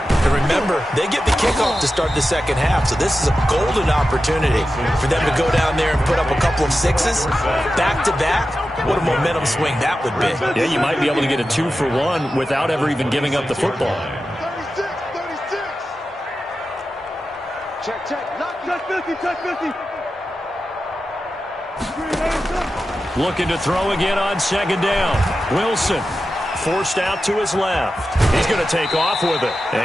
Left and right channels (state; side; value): normal; both; correlation 0.92